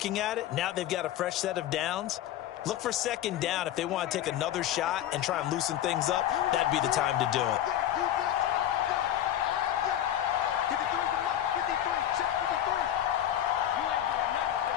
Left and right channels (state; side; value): quieter; right; 11.6 dB